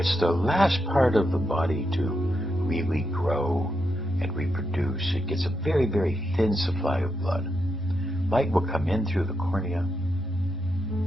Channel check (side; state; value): both; normal; correlation 0.83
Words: the last part of the body to really grow and reproduce. It gets a very, very thin supply of blood. Light will come in through the cornea